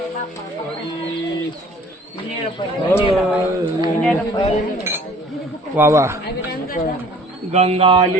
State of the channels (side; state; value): both; normal; correlation 0.52